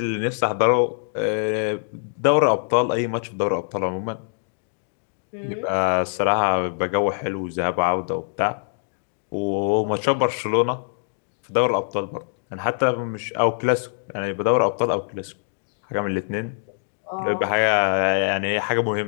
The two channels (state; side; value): silent; right; digital silence